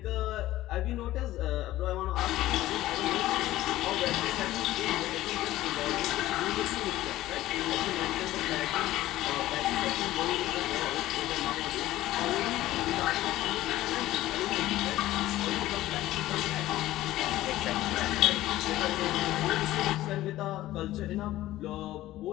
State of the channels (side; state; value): right; quieter; 15.5 dB